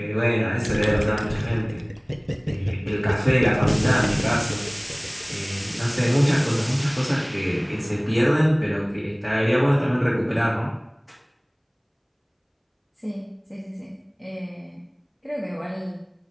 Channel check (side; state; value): both; identical; correlation 1.00